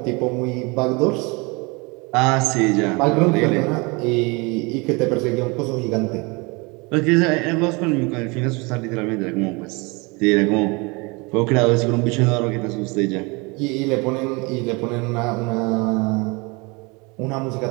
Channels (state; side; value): quieter; left; 27.8 dB